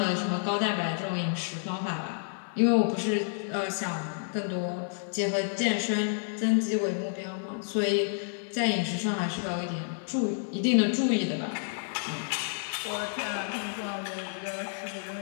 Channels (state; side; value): silent; right; 58 dB below the other